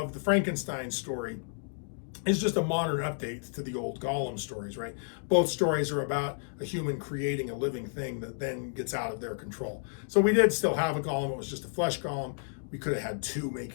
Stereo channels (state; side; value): silent; right; digital silence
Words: the Frankenstein story is just a modern update to the old Golem stories, right? Both stories are about a human creating a living thing that then gets out of their control. So we did still have a golem. It was just a flesh golem. We could have had two,